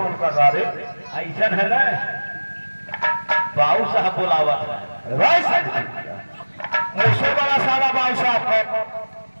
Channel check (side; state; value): both; inverted; correlation -1.00